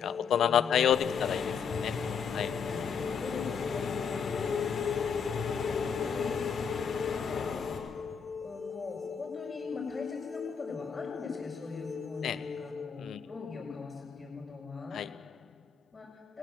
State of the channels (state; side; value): quieter; right; 6.6 dB